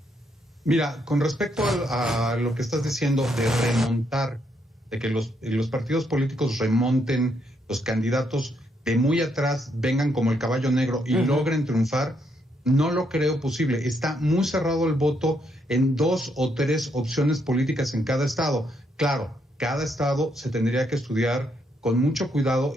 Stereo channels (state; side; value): normal; both; correlation 0.75